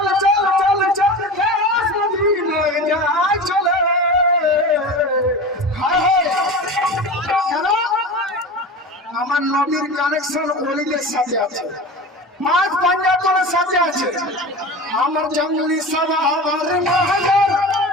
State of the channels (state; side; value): normal; both; correlation 0.31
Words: চল চল চল দেশ মদিনায় যাহাই চলে। আমার নবীর কানেকশন ওলিদের সাথে আছে, পাঁচ পাঞ্জাতনের সাথে আছে। আমার জঙ্গলি সাবা আবার মহাজার,